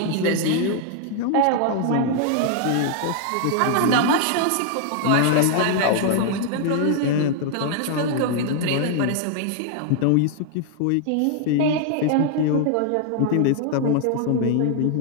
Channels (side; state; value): both; different; correlation 0.00